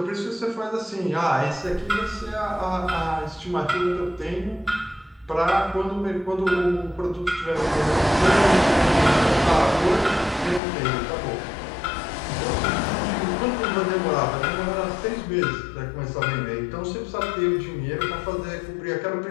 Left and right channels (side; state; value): right; drops out; at 10.6 s